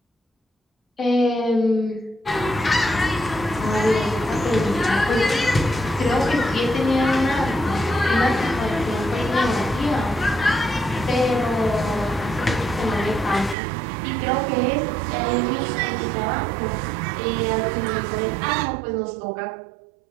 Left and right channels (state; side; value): drops out; left; at 13.6 s